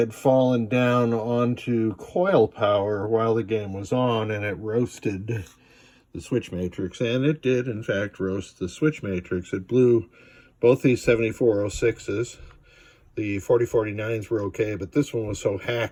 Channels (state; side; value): identical; both; correlation 1.00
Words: fallen down onto coil power while the game was on, and it roasted the switch matrix. And it did, in fact, roast the switch matrix. It blew both these 7406s. The 4049s were okay, but this one was so